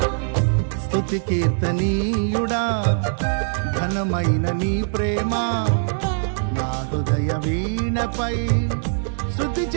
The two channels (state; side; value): silent; left; digital silence